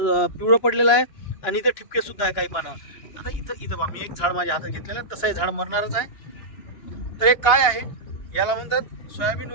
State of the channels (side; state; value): right; late; 2.8 ms